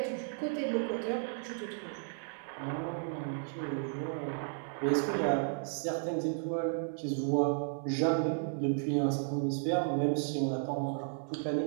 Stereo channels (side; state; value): left; silent; 55 dB below the other